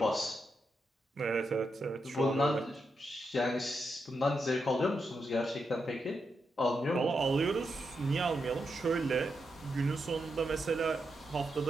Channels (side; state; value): both; normal; correlation 0.84